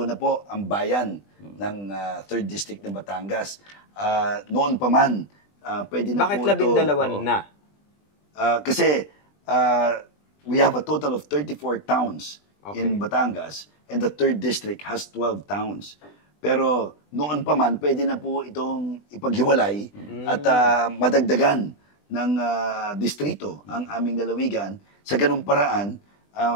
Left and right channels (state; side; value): late; right; 20 ms